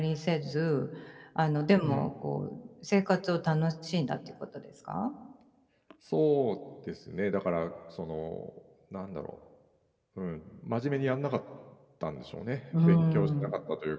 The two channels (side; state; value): both; identical; correlation 1.00